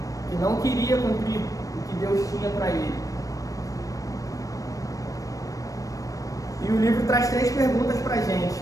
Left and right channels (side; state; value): right; late; 0.16 ms